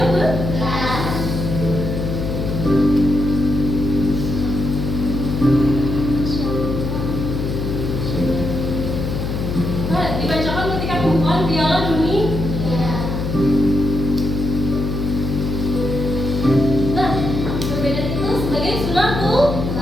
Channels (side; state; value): left; noise; hum, 2 dB below the sound